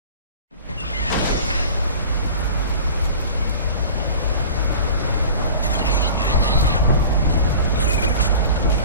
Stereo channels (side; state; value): both; inverted; correlation -0.41